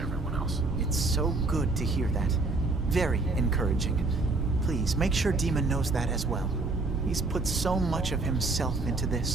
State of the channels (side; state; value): left; quieter; 3.4 dB